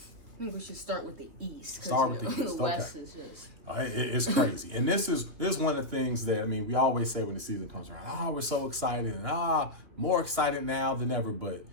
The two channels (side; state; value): left; late; 2.9 ms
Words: think we should start with the East. Start with the East. The West is just... It's crazy. And this is one of the things that, we always say when the season comes around, we're so excited and more excited now than ever. But